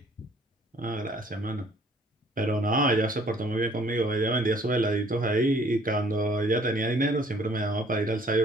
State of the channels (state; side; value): normal; both; correlation 0.58